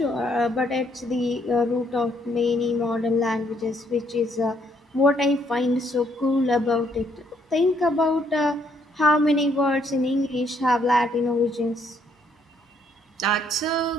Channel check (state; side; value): normal; both; correlation 0.69